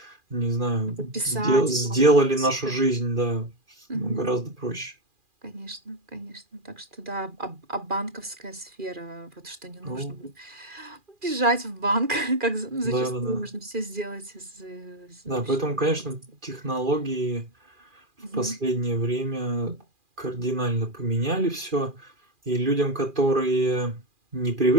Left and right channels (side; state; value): left; late; 2.4 ms